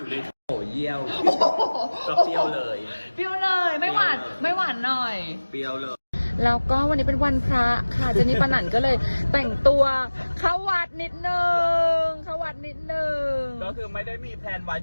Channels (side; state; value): both; inverted; correlation -1.00